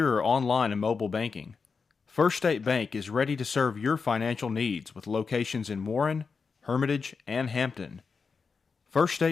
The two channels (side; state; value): right; quieter; 5.2 dB